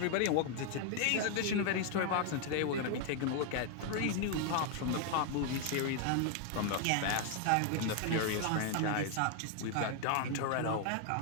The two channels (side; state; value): both; different; correlation 0.00